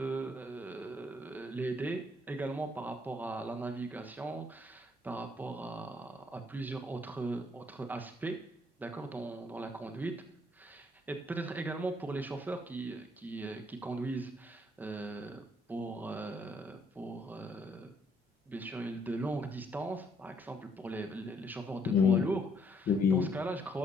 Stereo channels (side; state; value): both; normal; correlation 0.68